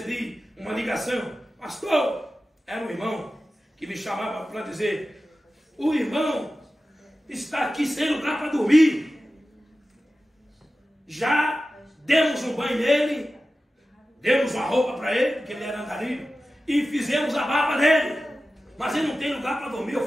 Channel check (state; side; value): normal; both; correlation 0.94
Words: uma ligação. Pastor, era um irmão que me chamava para dizer: o irmão está aqui sem lugar para dormir. Já demos um banho nele, demos uma roupa para ele, porque ele era andarilho, e fizemos a barba dele. Mas ele não tem lugar para dormir.